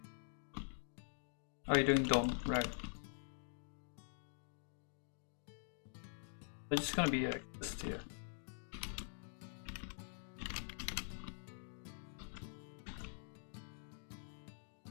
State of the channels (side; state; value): right; silent; digital silence